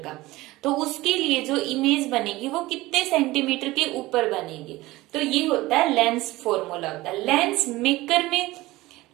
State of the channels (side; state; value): left; quieter; 18.9 dB